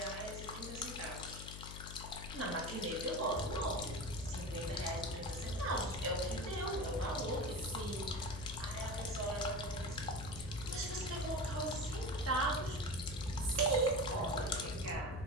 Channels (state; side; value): noise; left; hum, 9 dB below the sound